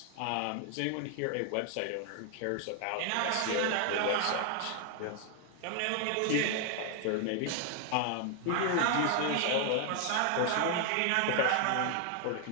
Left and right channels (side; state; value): both; different; correlation 0.00